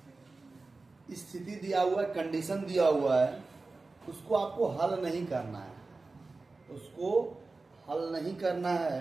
स्थिति दिया हुआ है, कंडीशन दिया हुआ है, उसको आपको हल नहीं करना है, उसको हल नहीं करना है,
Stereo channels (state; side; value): quieter; left; 3.6 dB